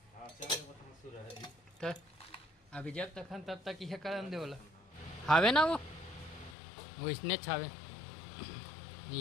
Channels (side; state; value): right; drops out; at 6.6 s